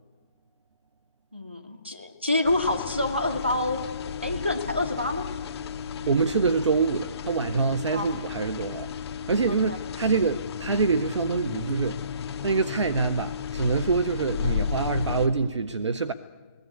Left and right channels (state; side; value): inverted; both; correlation -0.58